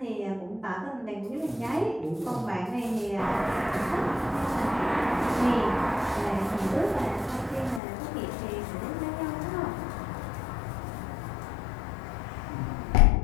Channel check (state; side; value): drops out; right; at 7.8 s